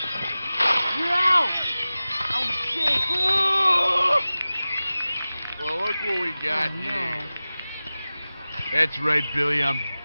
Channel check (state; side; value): inverted; both; correlation -0.97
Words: You're out! Oh shit! Well, look what we got here. That's right, Billy. I'm